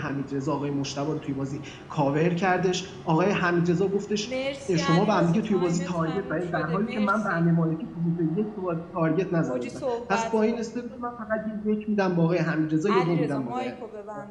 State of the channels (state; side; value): identical; both; correlation 1.00